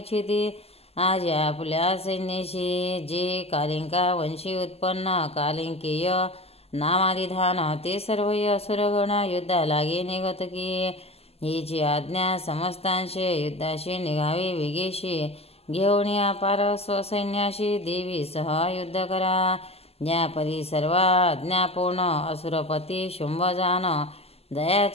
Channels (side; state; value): right; late; 0.29 ms